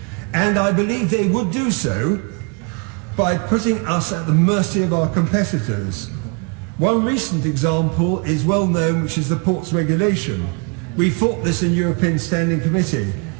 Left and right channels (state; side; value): quieter; left; 33.6 dB